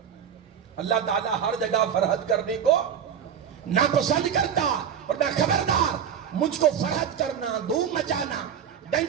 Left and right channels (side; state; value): left; quieter; 8.3 dB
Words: اللہ تعالیٰ ہر جگہ فرحت کرنے کو ناپسند کرتا، اور میں خبردار، مجھ کو فرحت کرنا، دھوم مچانا،